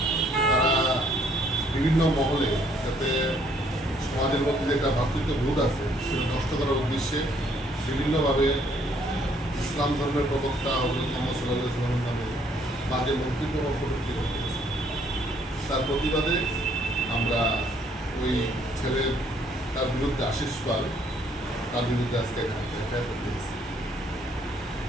তারা বিভিন্ন মহলে যাতে সমাজের মধ্যে যে একটা ভ্রাতৃত্ববোধ আছে সেটা নষ্ট করার উদ্দেশ্যে বিভিন্নভাবে ইসলাম ধর্মের প্রবক্তা হজরত মুহাম্মদ সাল্লাল্লাহু আলাইহি ওয়াসাল্লামের নামে বাজে মন্তব্য এবং কটূক্তি করতেছে। তার প্রতিবাদে আমরা ওই ছেলের তার বিরুদ্ধে আশিস পাল তার বিরুদ্ধে আজকে এফআইআর করতে গেছি।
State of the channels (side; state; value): both; normal; correlation 0.65